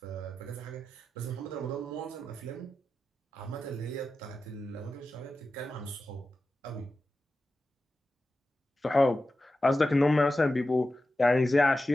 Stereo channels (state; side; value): normal; both; correlation 0.92